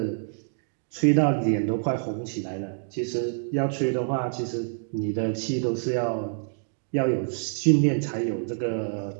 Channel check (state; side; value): silent; left; digital silence